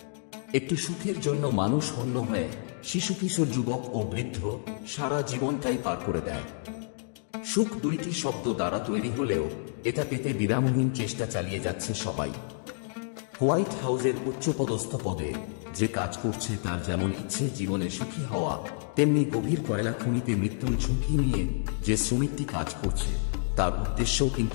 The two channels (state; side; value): silent; right; digital silence